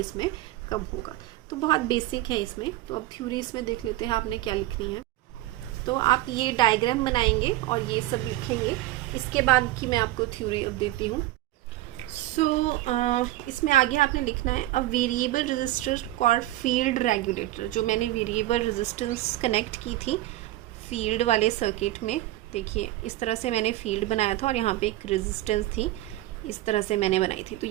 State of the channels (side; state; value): left; quieter; 16.3 dB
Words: कम होगा। तो बहुत बेसिक है इसमें। तो अब थ्योरी इसमें देख लेते हैं आपने क्या लिखनी है। तो आप ये डायग्राम बनाएंगे और ये सब लिखेंगे, इसके बाद की मैं आपको थ्योरी अब देती हूँ। इसमें आगे आपने लिखना है a variable resistor called field regulator. जो मैंने वेरिएबल रेजिस्टेंस कनेक्ट की थी फील्ड वाले सर्किट में, देखिए इस तरह से मैंने फील्ड बनाया था और यहाँ पे एक रेजिस्टेंस थी, इस तरह से मैंने बनाई थी। तो